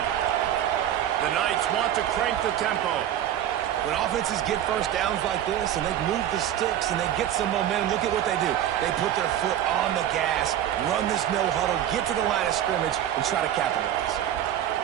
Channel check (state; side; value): quieter; left; 11.2 dB